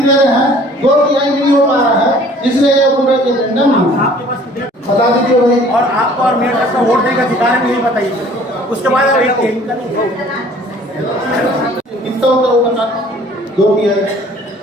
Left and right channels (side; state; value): both; normal; correlation 0.53